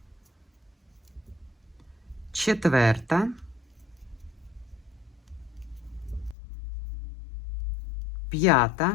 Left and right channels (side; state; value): right; drops out; at 6.4 s